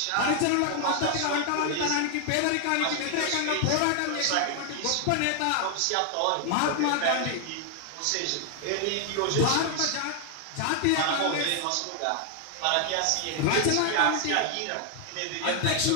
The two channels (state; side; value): different; both; correlation 0.00